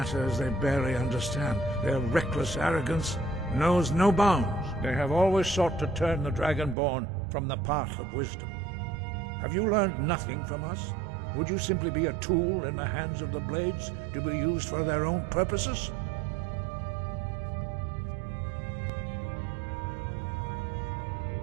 they barely understand. Their reckless arrogance knows no bounds. They have always sought to turn the Dragonborn from the path of wisdom. Have you learned nothing from us? Would you simply be a tool in the hands of the Blades to be used for their own purposes?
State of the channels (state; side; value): drops out; left; at 6.8 s